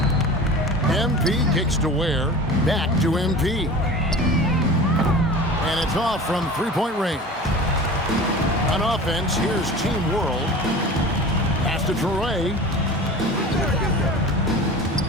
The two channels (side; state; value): both; normal; correlation 0.37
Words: MP kicks to Ware, back to MP. And it's off from three-point range. On offense, here's Team World. Pass to Toure.